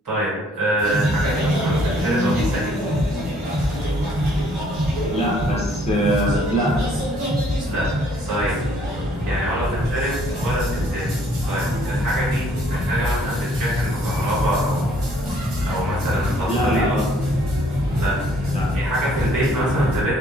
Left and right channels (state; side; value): normal; both; correlation 0.62